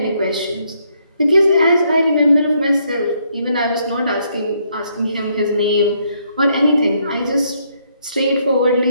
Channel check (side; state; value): both; inverted; correlation -0.72